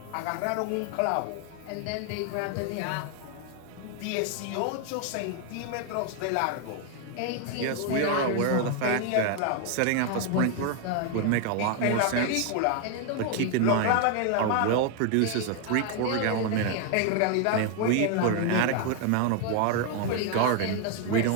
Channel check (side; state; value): both; different; correlation 0.00